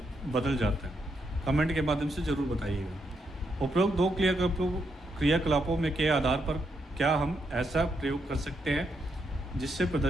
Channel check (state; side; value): normal; both; correlation 0.80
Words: बदल जाता है। कमेंट के माध्यम से ज़रूर बताइएगा। उपरोक्त 2 क्रियाकलापों में के आधार पर क्या हम ऐसा प्रयोग कर सकते हैं जिससे